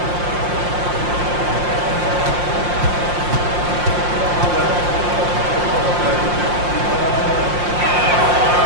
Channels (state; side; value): late; left; 5.7 ms